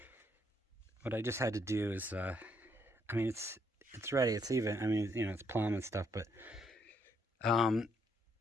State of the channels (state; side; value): normal; both; correlation 0.72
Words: what I just had to do is, I mean, it's ready, it's even. I mean, you know, it's plumb and stuff, but